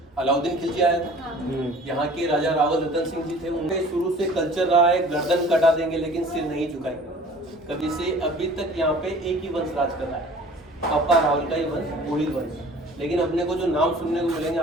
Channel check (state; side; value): normal; both; correlation 0.47